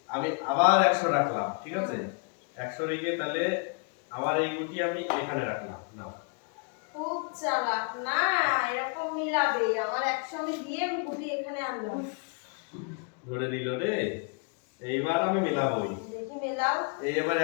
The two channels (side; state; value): right; quieter; 38.1 dB